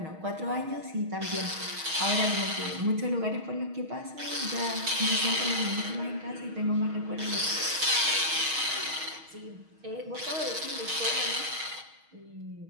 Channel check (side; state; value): left; late; 6.3 ms